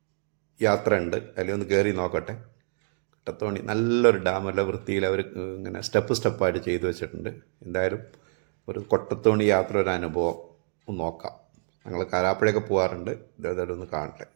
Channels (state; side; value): silent; left; digital silence